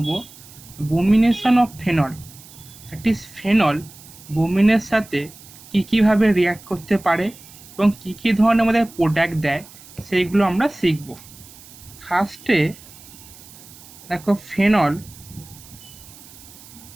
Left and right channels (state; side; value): noise; right; hiss, 20 dB below the sound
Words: bromination of phenol, that is phenol বোমিনের সাথে কীভাবে রিয়াক্ট করতে পারে এবং কী ধরনের আমাদের প্রোডাক্ট দেয় সেইগুলো আমরা শিখব। ফার্স্টে দেখো, ফেনল